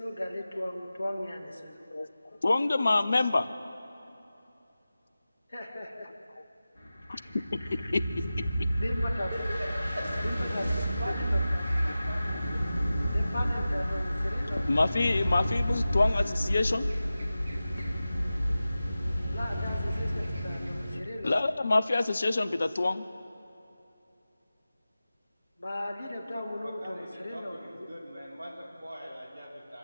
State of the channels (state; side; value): inverted; both; correlation -0.95